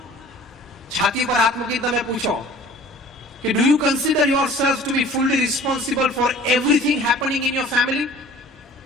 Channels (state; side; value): normal; both; correlation 0.48